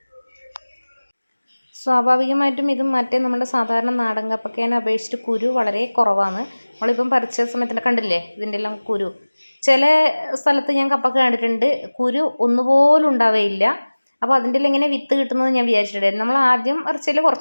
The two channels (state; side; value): inverted; both; correlation -1.00